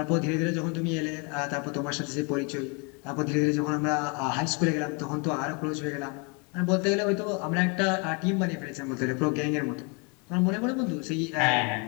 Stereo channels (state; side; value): quieter; right; 32.9 dB